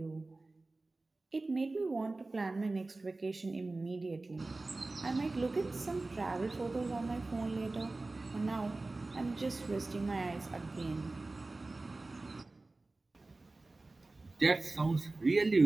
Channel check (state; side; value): quieter; left; 3.2 dB